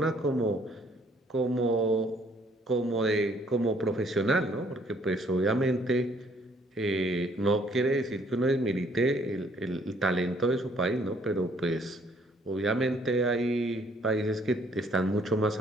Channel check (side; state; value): both; normal; correlation 0.63